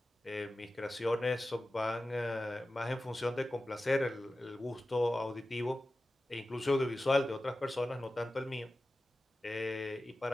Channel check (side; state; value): both; normal; correlation 0.94